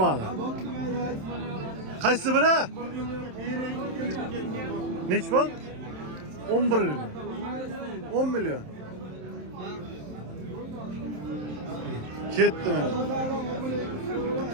Qaysi biri? Nechi pul? 11 million. 10 million. Ketdi mana.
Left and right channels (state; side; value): late; left; 27 ms